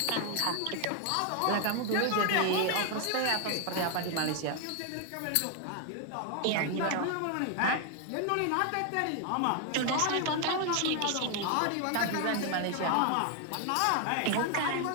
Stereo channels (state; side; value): different; both; correlation 0.00